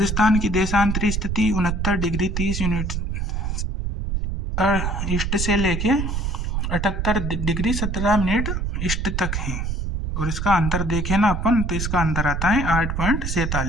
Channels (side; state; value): right; noise; rumble, 1 dB below the sound